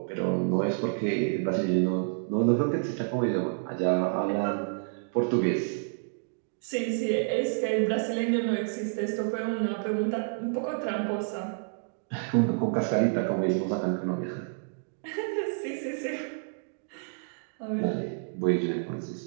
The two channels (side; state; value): left; silent; digital silence